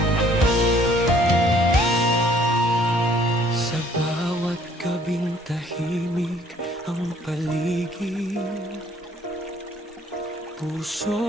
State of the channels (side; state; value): both; normal; correlation 0.60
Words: bawat gabing tahimik ang paligid,